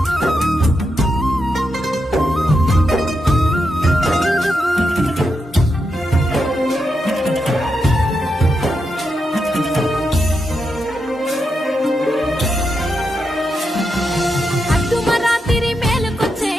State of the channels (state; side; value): normal; both; correlation 0.85